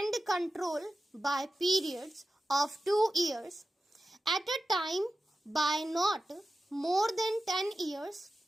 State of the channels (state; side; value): normal; both; correlation 0.93